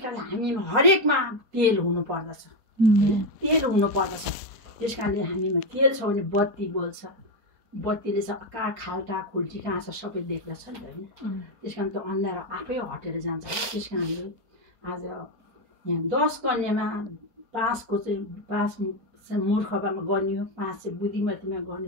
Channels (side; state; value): left; late; 4.2 ms